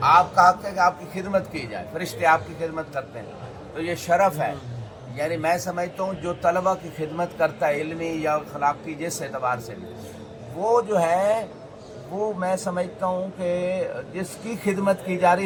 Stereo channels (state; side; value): identical; both; correlation 1.00